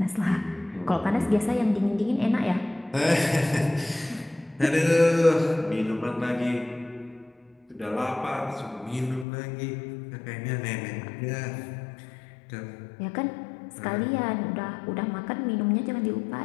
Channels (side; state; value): right; drops out; at 9.2 s